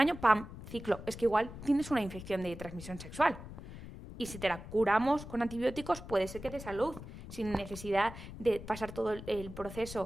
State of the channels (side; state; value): left; noise; rumble, 12 dB below the sound